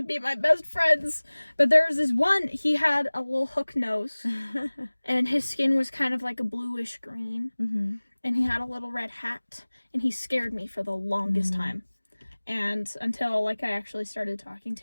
be my best friends. But there was this one, he had a little hook nose, and his skin was kind of like a bluish green, and he had a little red hat, and he scared me for the longest time. And until, like, I actually started talking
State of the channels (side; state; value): both; inverted; correlation -1.00